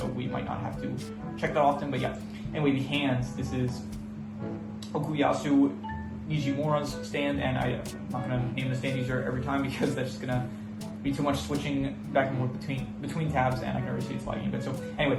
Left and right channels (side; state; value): both; identical; correlation 1.00